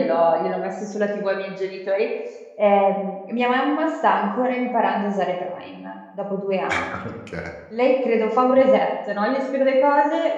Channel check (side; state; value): both; identical; correlation 1.00